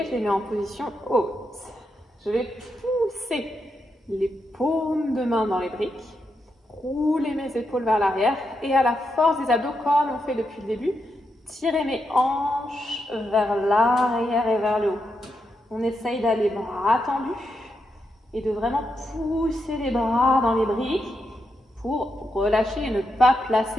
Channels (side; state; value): both; normal; correlation 0.84